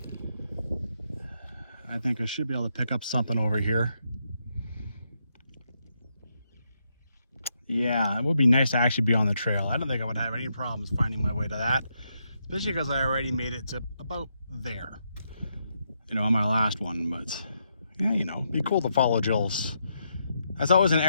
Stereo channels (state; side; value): inverted; both; correlation -0.80